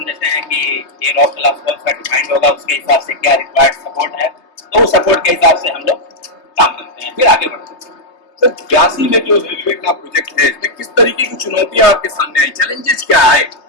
देते हैं कि ये रॉक क्लास कौन सा डिफाइंड होगा, उसके हिसाब से क्या रिक्वायर्ड सपोर्ट है, तो उस सपोर्ट के हिसाब से हम लोग काम करते हैं, फिर आगे बढ़ते हैं। सर, ब्यासी में जो रेलवे का प्रोजेक्ट है, इसमें किस तरीके की चुनौतियां आपके सामने आई, चैलेंजेस क्या आए?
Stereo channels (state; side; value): late; right; 3.2 ms